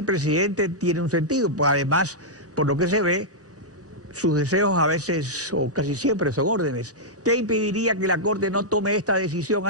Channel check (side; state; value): both; normal; correlation -0.08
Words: presidente tiene un sentido, pues además, por lo que se ve, sus deseos a veces o casi siempre son órdenes. ¿Qué impediría que la Corte no tome esta decisión